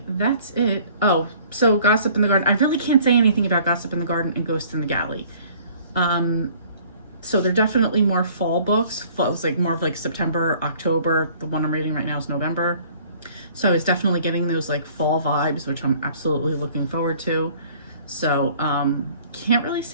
that's it. Oh, so Gossip in the Garden. I really can't say anything about Gossip in the Garden and Ghost in the Galley. So they're definitely more fall books. It's like more of like September, October. The one I'm reading right now is November. So it's definitely getting those like fall vibes, which I'm absolutely looking forward to. So can't really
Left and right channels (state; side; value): inverted; both; correlation -0.54